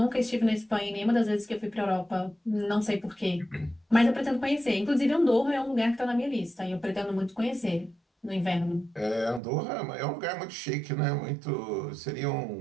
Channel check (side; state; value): left; drops out; at 9.4 s